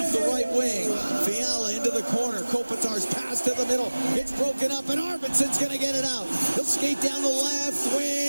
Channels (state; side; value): inverted; both; correlation -1.00